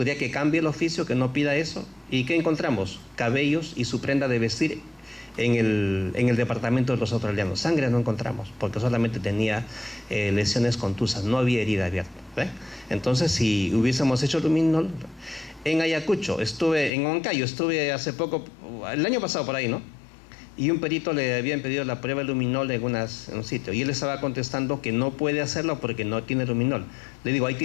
que cambie el oficio, que no pida eso. ¿Y qué encontramos? Cabellos y su prenda de vestir en el departamento de los australianos. Sangre no encontramos, porque solamente tenía lesiones contusas, no había herida abierta. ¿Ve? Entonces, si hubiésemos hecho luminol... En Ayacucho, en Huancayo, estuve hace poco, el año pasado por ahí, ¿no? Y un perito le habían pedido la prueba de luminol en un sitio, y él estaba contestando que no puede hacerlo porque no tiene luminol. Le digo, ahí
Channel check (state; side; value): drops out; right; at 16.9 s